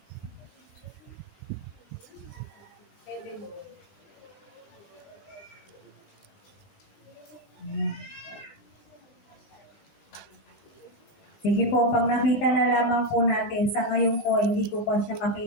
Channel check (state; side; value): late; right; 20 ms